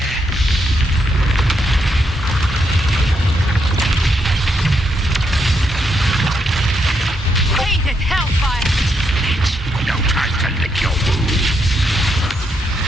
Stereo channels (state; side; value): normal; both; correlation 0.79